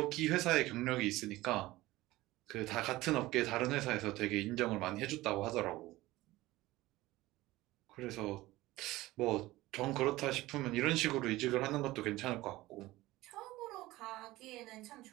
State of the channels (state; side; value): quieter; left; 18.2 dB